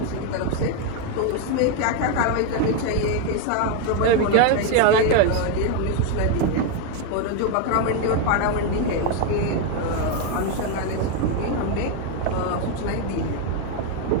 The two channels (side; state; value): both; different; correlation 0.01